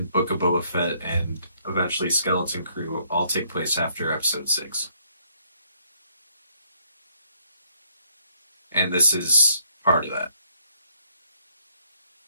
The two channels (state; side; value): inverted; both; correlation -0.69